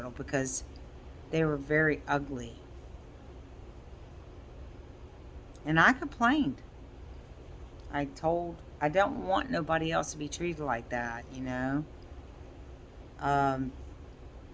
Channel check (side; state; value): both; identical; correlation 1.00